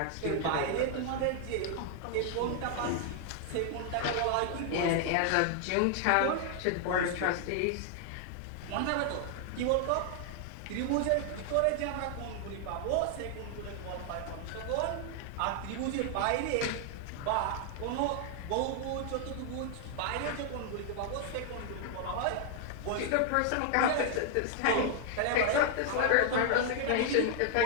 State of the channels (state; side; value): different; both; correlation 0.00